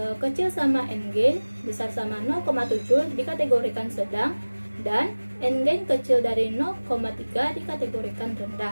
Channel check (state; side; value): inverted; both; correlation -1.00